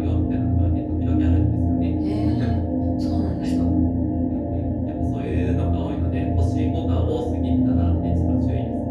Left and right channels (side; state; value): both; identical; correlation 1.00